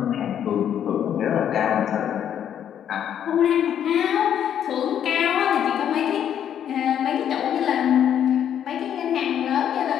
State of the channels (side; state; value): right; quieter; 9.5 dB